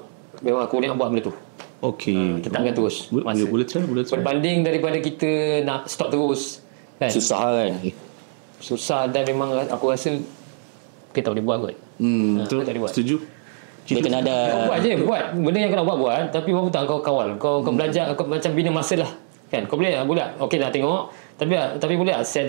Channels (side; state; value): left; silent; digital silence